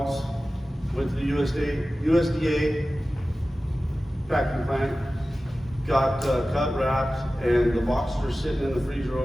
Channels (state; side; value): normal; both; correlation 0.96